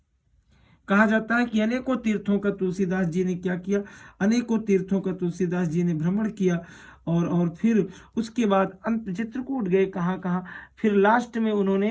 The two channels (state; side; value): identical; both; correlation 1.00